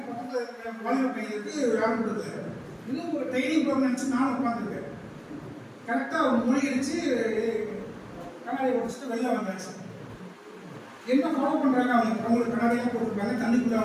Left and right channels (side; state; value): both; identical; correlation 1.00